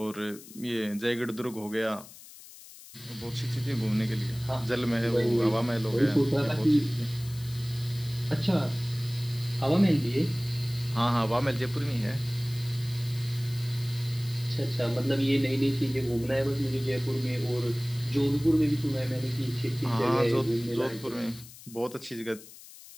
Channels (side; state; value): left; noise; hiss, 18 dB below the sound